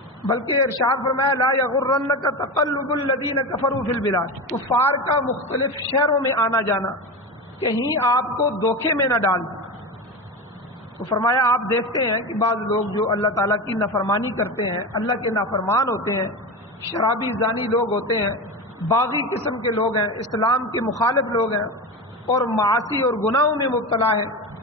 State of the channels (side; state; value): both; normal; correlation 0.22